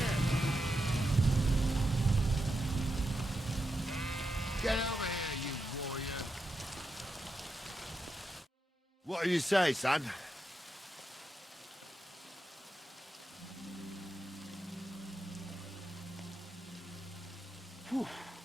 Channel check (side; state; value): both; normal; correlation 0.86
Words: Get over here, you warrior. What do you say, son?